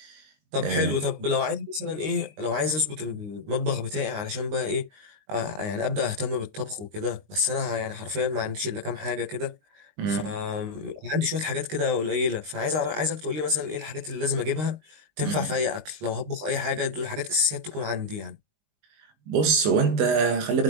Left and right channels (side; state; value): left; late; 19 ms